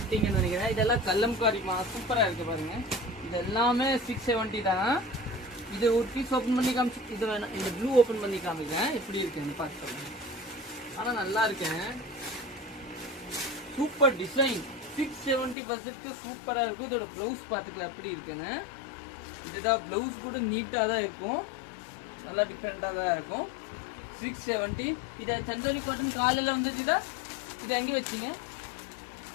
நினைக்கிறேன். இதெல்லாம் கல்லம்காரிமா சூப்பரா இருக்கு பாருங்க. இது எல்லாமே 670 தான். இது ஒரு பீஸ் ஓபன் பண்ணி காமிச்சு இது வேணாம். இந்த ப்ளூ ஓபன் பண்ணி காமிக்கிறேன் எப்படி இருக்குன்னு பார்த்து. ஆனா நல்லா இருக்கேன். சூப்பர் டிசைன் 670 சூப்பரா இருக்கும். இதோட பிளவுஸ் பாத்துக்கலாம் எப்படி இருக்குன்னு. இதுதான் பிளவுஸ் கூட நீட்டா தான் இருக்கும். நல்லா டிஃப்ரெண்டா தான் இருக்கும். 670. இதை சந்தோரி காட்டன் காலையில வந்துச்சுதா. இது எங்க வச்சீங்க?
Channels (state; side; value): drops out; right; at 15.6 s